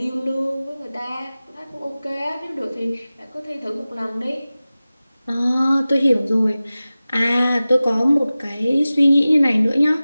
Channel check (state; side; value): inverted; both; correlation -0.97